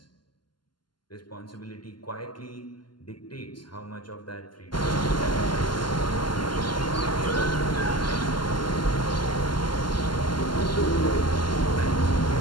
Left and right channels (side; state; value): right; late; 0.71 ms